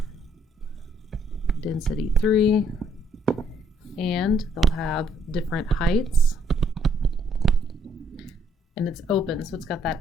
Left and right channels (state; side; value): normal; both; correlation 0.68